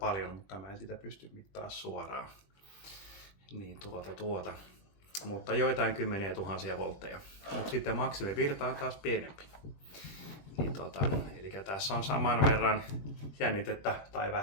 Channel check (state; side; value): late; right; 20 ms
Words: mutta mä en sitä pysty mittaa suoraan. Niin Mutta joitain kymmeniä tuhansia voltteja. Mutta sitten maksimivirta on taas pienempi. Niin eli tässä on saman verran jännitettä tai